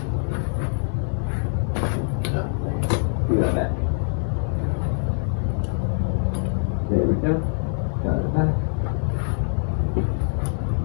Do that back. There we go. Got it back.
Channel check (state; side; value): silent; right; digital silence